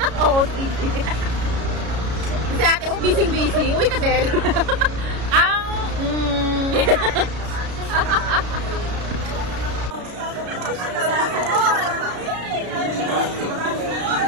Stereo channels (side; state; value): left; late; 33 ms